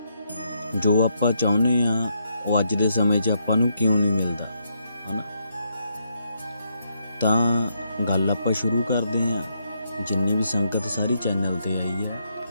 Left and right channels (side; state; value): both; inverted; correlation -0.77